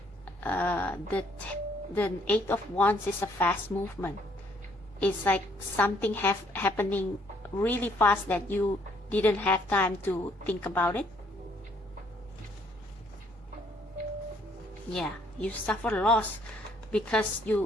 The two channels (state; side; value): normal; both; correlation 0.66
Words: the 8 of Wands is a fast movement. It's like something happening really fast that you didn't have time to think about it. Yeah, you suffer loss because